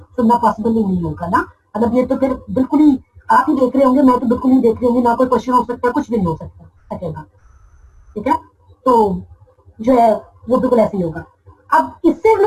पॉसिबल ही नहीं होगा ना। मतलब ये तो फिर बिल्कुल ही आप ही देख रहे होंगे, मैं तो बिल्कुल नहीं देख रही होंगी, ना कोई क्वेश्चन हो सकता है, कुछ भी नहीं हो सकेगा, ठीक है। तो जो है वो बिल्कुल ऐसे ही होगा। अब इससे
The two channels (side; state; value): both; identical; correlation 1.00